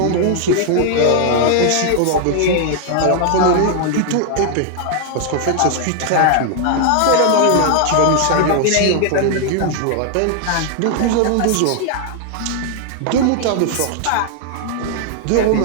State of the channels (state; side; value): different; both; correlation 0.00